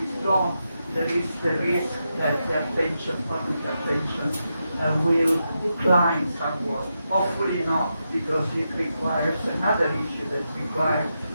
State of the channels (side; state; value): both; inverted; correlation -0.86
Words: is gone, there is the risk that the attention, public attention, will decline somewhat. Hopefully not, because it requires another issue that requires